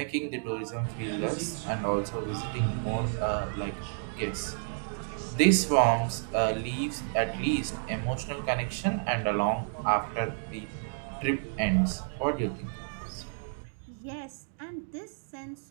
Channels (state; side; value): silent; left; digital silence